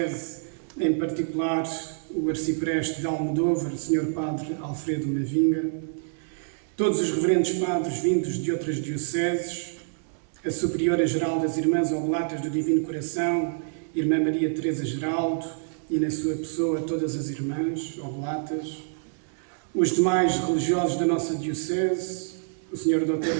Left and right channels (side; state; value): left; silent; 60 dB below the other